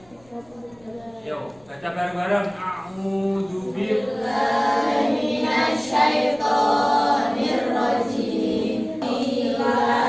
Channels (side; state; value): left; noise; rumble, 30 dB below the sound